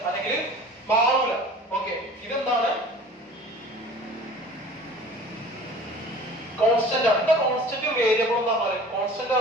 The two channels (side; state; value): both; normal; correlation 0.44